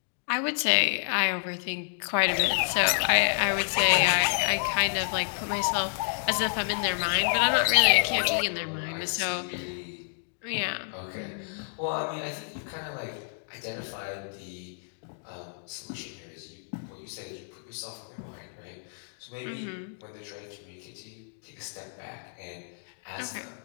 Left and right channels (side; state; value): right; silent; digital silence